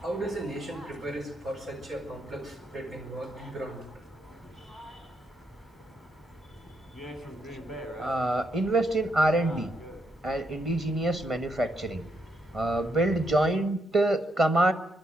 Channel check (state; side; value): normal; both; correlation 0.77